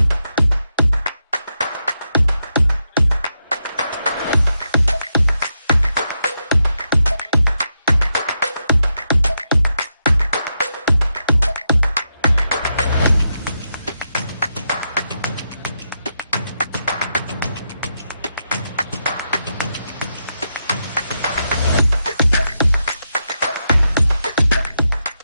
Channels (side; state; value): both; inverted; correlation -0.84